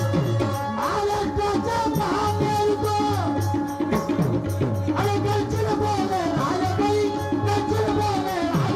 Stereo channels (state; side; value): identical; both; correlation 1.00